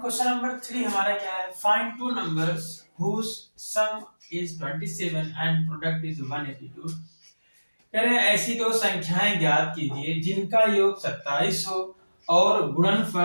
नंबर 3 हमारा क्या है, find two numbers whose sum is 27 and product is 182। कह रहे हैं ऐसी दो संख्याएं ज्ञात कीजिए जिनका योग 27 हो और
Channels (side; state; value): both; inverted; correlation -1.00